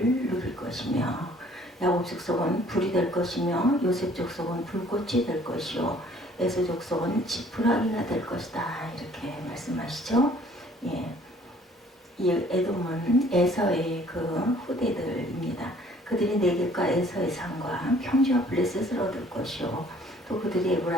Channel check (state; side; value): normal; both; correlation 0.57